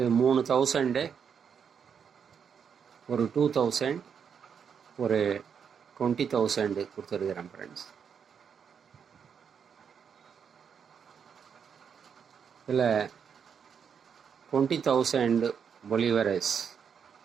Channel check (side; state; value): left; quieter; 7.1 dB